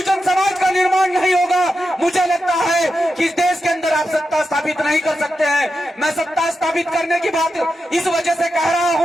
समाज का निर्माण नहीं होगा, मुझे लगता है कि इस देश के अंदर आप सत्ता स्थापित नहीं कर सकते हैं। मैं सत्ता स्थापित करने की बात इस वजह से कह रहा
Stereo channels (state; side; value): normal; both; correlation 0.89